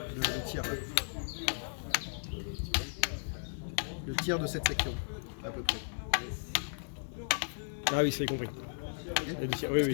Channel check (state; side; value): silent; right; digital silence